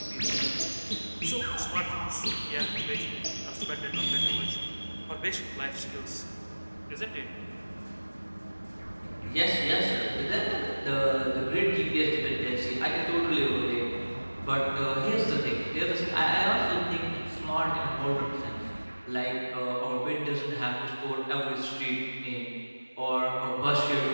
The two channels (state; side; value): inverted; both; correlation -1.00